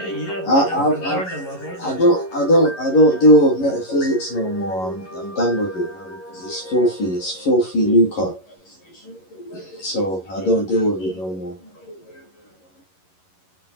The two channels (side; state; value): right; late; 11 ms